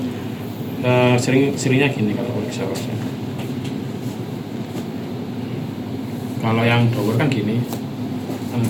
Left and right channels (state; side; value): identical; both; correlation 1.00